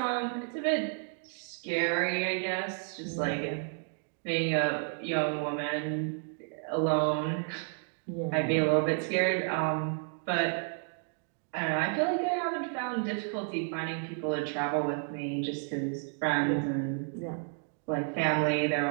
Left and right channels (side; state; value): left; silent; 57 dB below the other